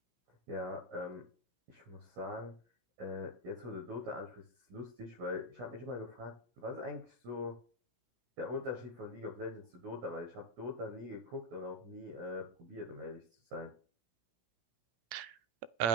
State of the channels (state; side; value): late; left; 17 ms